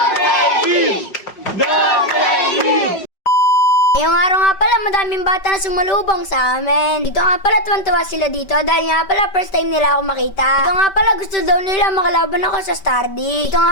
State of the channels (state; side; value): late; right; 5.2 ms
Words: Ngayong araw nga pala, madaming bata na sumalubong sa amin. Dito nga pala, tuwan-tuwa sila dito dahil nga pala, first time nila ako makita. Dito nga pala, gusto daw nila makalaban ako sa Star D. Dito